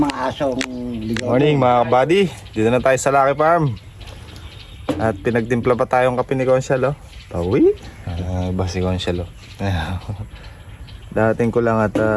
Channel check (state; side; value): identical; both; correlation 1.00